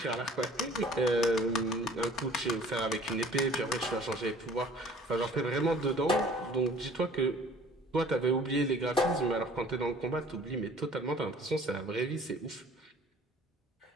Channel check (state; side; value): normal; both; correlation 0.51